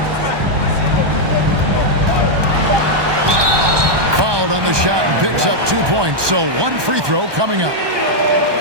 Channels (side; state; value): left; late; 1.2 ms